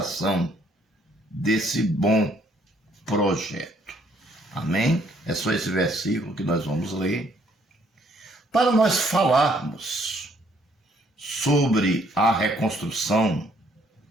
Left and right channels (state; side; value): normal; both; correlation 0.66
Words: desse bom projeto. Amém? É só esse versículo que nós vamos ler. Para nós falarmos sobre a reconstrução